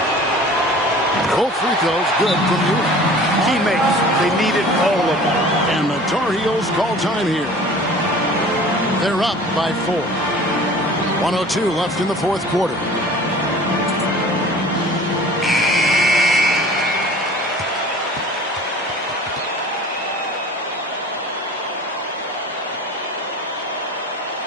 Both free throws good from you. Teammates, they needed all of them. And the Tar Heels call time here. They're up by 4. 1:02 left in the 4th quarter.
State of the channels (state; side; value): normal; both; correlation 0.44